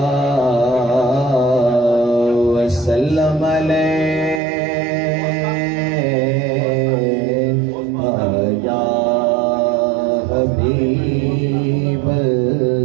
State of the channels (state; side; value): drops out; left; at 4.4 s